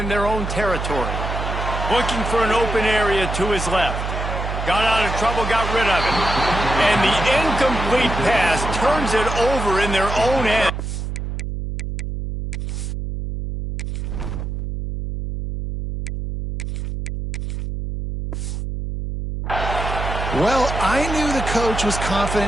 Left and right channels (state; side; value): noise; right; hum, 4 dB below the sound